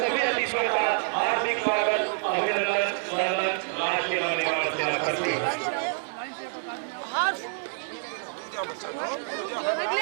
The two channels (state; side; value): silent; left; digital silence